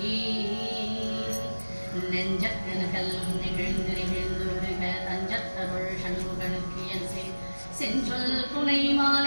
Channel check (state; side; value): inverted; both; correlation -1.00